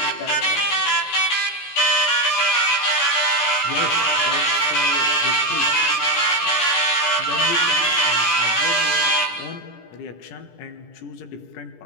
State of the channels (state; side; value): late; right; 17 ms